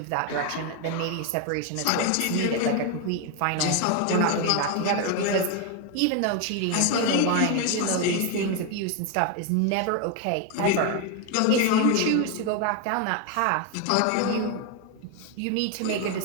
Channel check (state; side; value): different; both; correlation 0.02